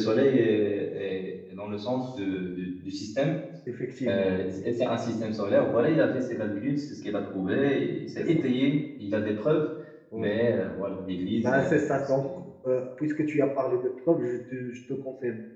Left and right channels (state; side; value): identical; both; correlation 1.00